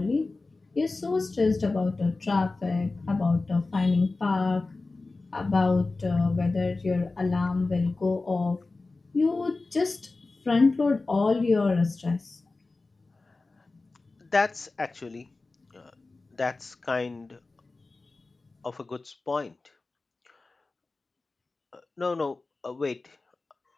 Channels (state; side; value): quieter; right; 3.5 dB